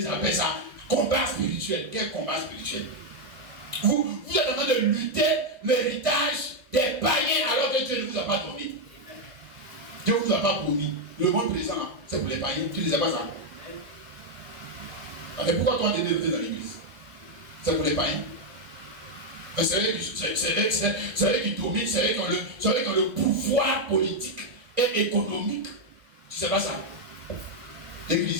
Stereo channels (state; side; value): late; left; 1.6 ms